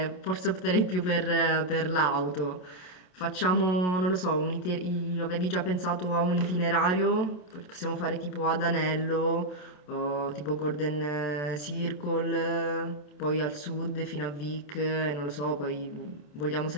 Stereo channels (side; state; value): right; late; 27 ms